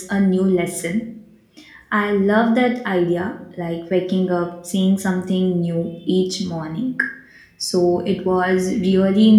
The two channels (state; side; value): identical; both; correlation 1.00